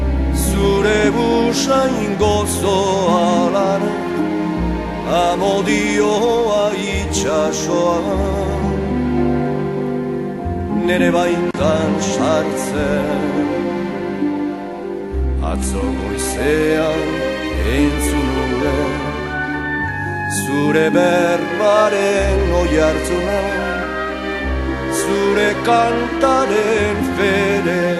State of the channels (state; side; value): identical; both; correlation 1.00